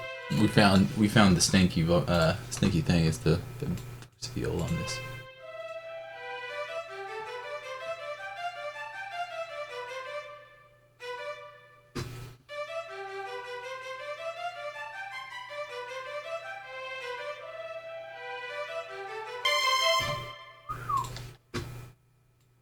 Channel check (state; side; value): identical; both; correlation 1.00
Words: We found the stinky thing is the feel on this.